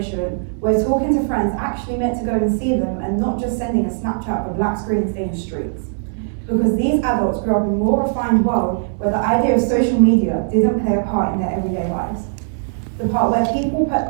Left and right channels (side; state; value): left; silent; digital silence